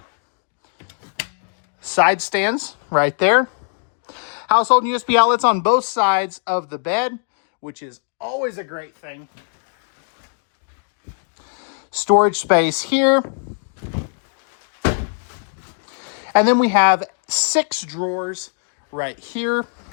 side stands right there. Household USB outlets on both sides of the bed, which is always a great thing. Storage space here. And then we have 6 drawers right here.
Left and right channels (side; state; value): right; silent; digital silence